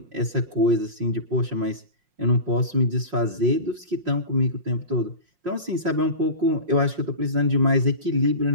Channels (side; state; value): left; late; 5.6 ms